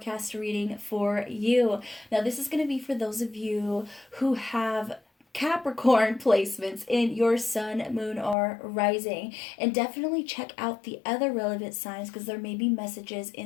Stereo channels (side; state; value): right; drops out; at 8.3 s